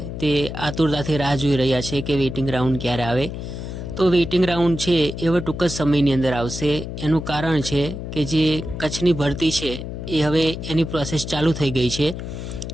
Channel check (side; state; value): left; noise; hum, 7 dB below the sound